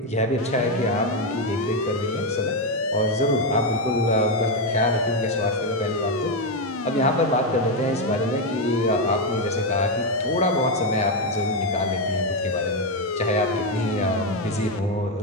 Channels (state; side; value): normal; both; correlation 0.06